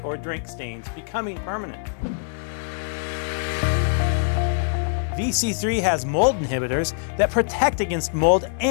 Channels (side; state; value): right; silent; 59 dB below the other